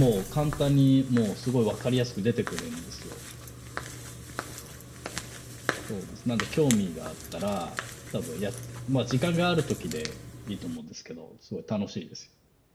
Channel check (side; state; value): both; identical; correlation 1.00